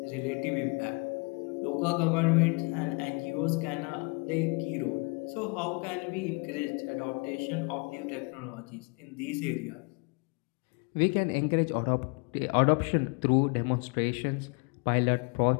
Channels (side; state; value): right; quieter; 32.3 dB